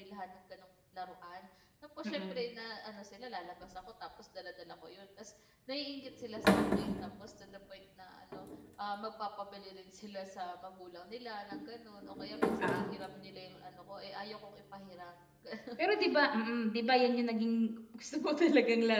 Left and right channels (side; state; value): both; identical; correlation 1.00